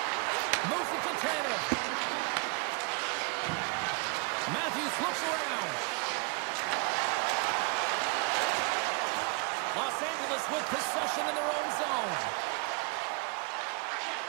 Moves it to Tanev. Matthews looks around. Los Angeles with possession in their own zone.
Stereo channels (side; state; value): left; quieter; 31.7 dB